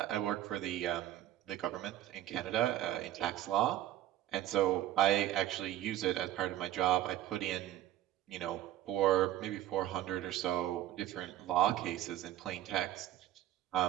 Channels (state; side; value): quieter; left; 13.4 dB